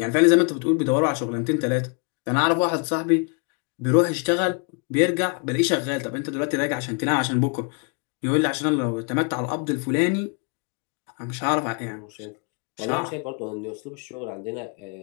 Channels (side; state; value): right; quieter; 37.5 dB